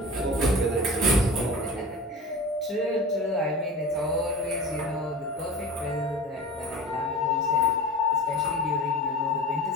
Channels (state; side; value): normal; both; correlation 0.34